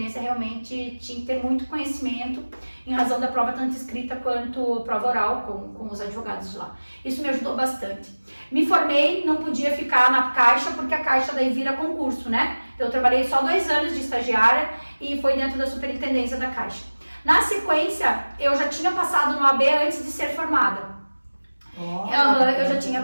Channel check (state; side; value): inverted; both; correlation -1.00